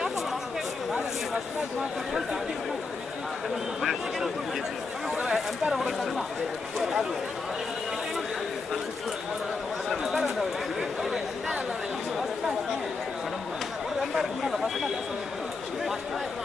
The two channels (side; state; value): right; quieter; 4.2 dB